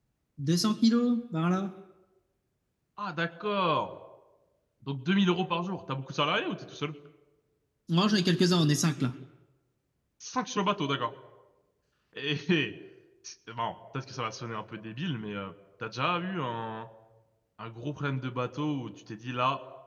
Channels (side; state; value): both; identical; correlation 1.00